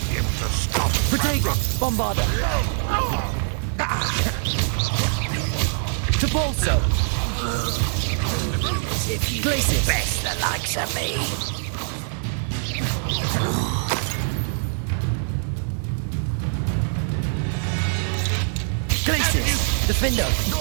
be able to stop. Protego, Bombarder. Topolso. If you Glacius. best the likes of me. Glacius, Defender.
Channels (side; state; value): left; silent; digital silence